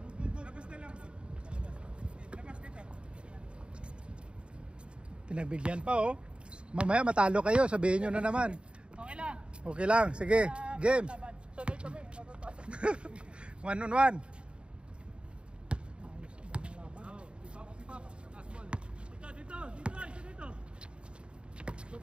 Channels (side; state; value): left; late; 0.054 ms